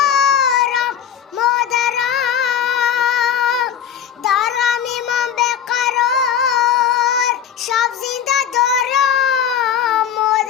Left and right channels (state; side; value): quieter; right; 8.5 dB